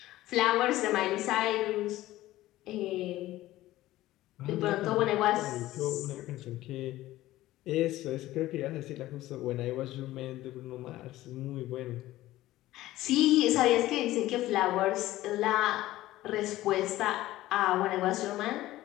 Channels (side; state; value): right; quieter; 16.0 dB